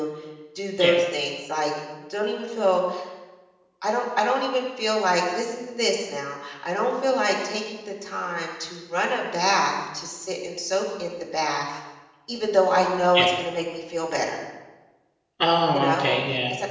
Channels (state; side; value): identical; both; correlation 1.00